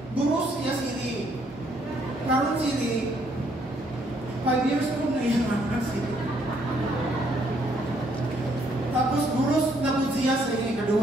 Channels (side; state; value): both; normal; correlation 0.69